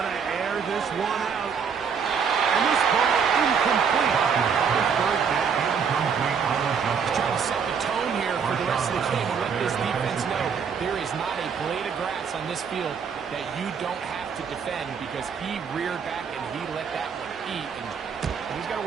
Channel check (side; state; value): left; quieter; 6.5 dB